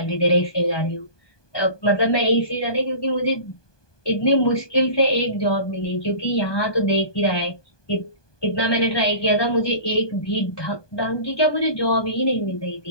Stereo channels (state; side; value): late; right; 1.2 ms